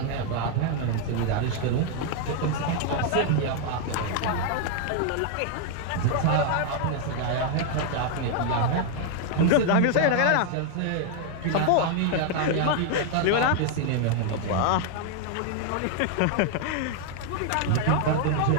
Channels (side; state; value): both; different; correlation 0.00